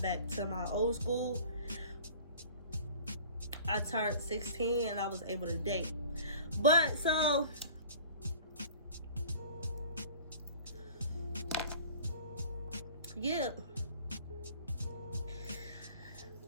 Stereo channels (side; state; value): both; inverted; correlation -0.45